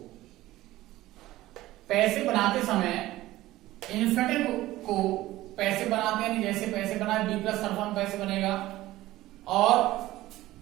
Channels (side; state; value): left; quieter; 16.4 dB